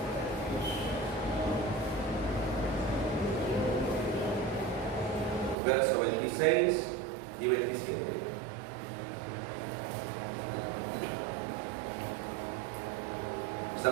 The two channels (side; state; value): left; drops out; at 5.6 s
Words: Verso 26 y 27.